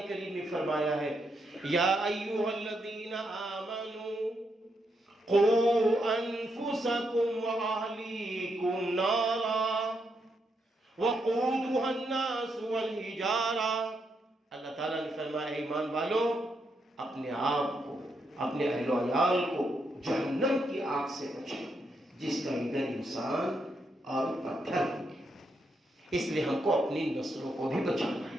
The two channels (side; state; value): both; normal; correlation 0.80